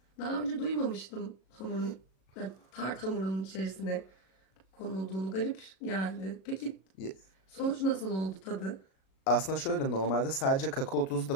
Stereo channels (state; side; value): late; right; 37 ms